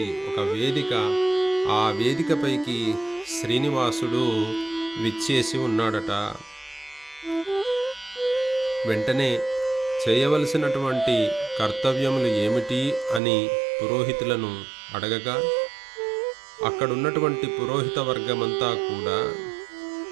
ఒక వేదిక, ఆ వేదికపైకి శ్రీనివాసుడు విచ్చేసి ఉన్నాడట. వెంటనే చేయవలసినటువంటి కర్తవ్యములు ఏమిటి అని పురోహితులను అడగగా, అక్కడున్నటువంటి పురోహిత వర్గమంతా కూడా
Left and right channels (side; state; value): left; drops out; at 13.2 s